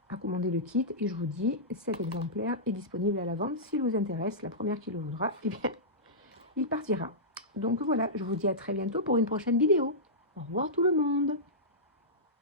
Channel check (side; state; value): both; normal; correlation -0.15